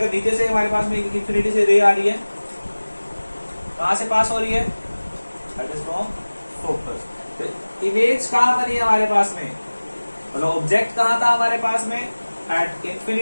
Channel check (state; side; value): inverted; both; correlation -1.00